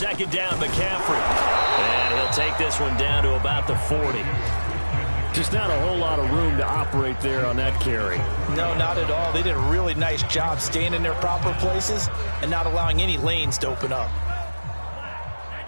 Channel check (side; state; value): both; inverted; correlation -1.00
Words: down, McCaffrey. And he'll take this one down to about the 40. Just not a whole lot of room to operate there on that carry. No, not at all. They did a really nice job staying in their proper places and not allowing any lanes to open up.